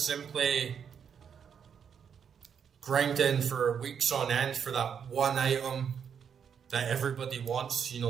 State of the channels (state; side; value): quieter; left; 7.4 dB